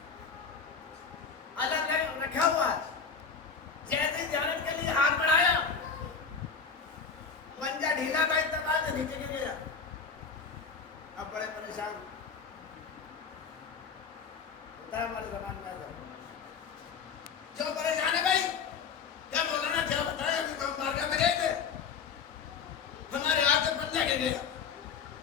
اللہ نے رکھا ہوا ہے, جیسے ہی زیارت کے لیے ہاتھ بڑھایا, پنجہ ڈھیلا تھا اتفاق سے نیچے گر گیا. اب بڑے پریشان ہوتا ہے ہمارے زمان میں ایسا. جو پریشان ہے بھائی, کیا مولانا کیا بتائے, ابھی امام بارگاہ میں گئے تھے, ہمارے ہاتھ سے پنجہ گر گیا,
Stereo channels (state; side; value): quieter; right; 5.7 dB